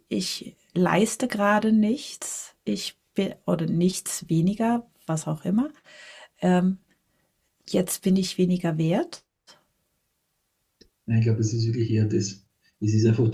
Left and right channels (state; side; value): identical; both; correlation 1.00